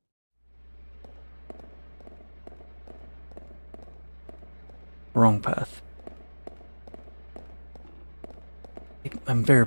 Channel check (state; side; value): inverted; both; correlation -1.00